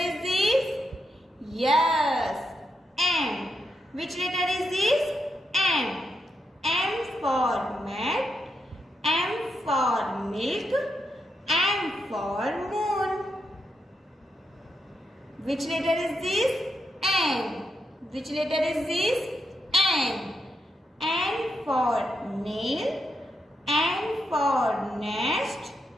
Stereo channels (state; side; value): normal; both; correlation 0.83